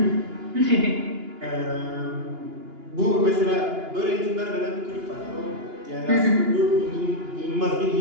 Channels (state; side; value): late; left; 2.9 ms